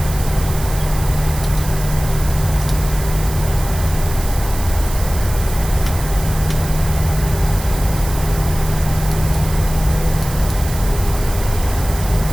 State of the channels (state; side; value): noise; right; hiss, 12 dB below the sound